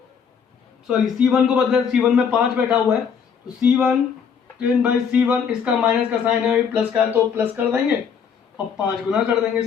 को बदले, C1 में 5 बैठा हुआ है तो C1 10 बाई C1, इसका माइनस का साइन है, प्लस का, तो प्लस कर देंगे और 5 गुना कर देंगे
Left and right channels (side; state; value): right; quieter; 6.9 dB